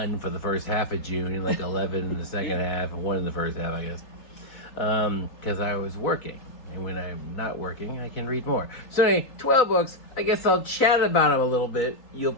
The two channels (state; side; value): late; right; 4.0 ms